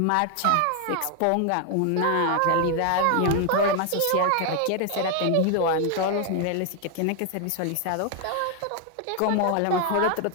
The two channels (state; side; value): different; both; correlation 0.00